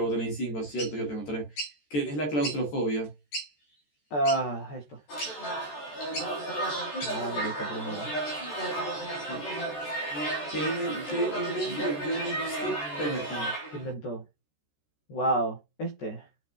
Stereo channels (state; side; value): late; right; 14 ms